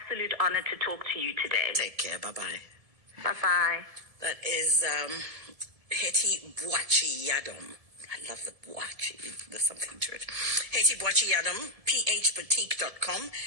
honor to talk to you today. Take care. Bye-bye. Bye-bye. That is Hetty Boachi Yadom. I love the Boachi. There's something to it. Hetty Boachi Yadom, phboutique.com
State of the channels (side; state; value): left; late; 1.7 ms